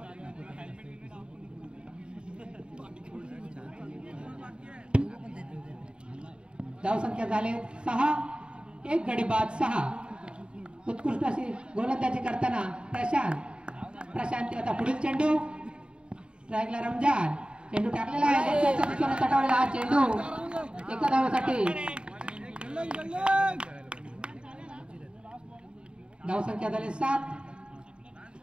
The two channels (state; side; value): late; left; 0.053 ms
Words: धावसंख्या झाले 6 एक गडी बाद 6 उत्कृष्ट अशी गोलंदाजी करताना प्रशांत प्रशांत आता पुढील चेंडू स्ट्राईकला रमजान चेंडू टाकलेला आहे तटावलेला हा चेंडू एका धावेसाठी धावसंख्या झाली 7